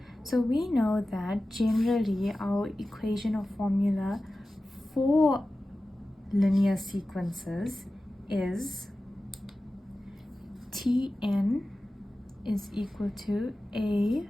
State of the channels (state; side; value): normal; both; correlation 0.95